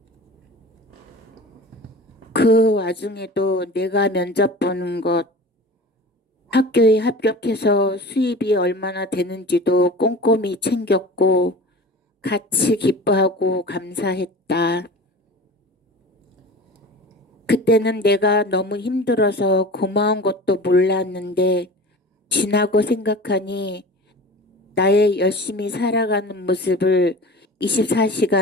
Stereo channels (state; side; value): normal; both; correlation 0.37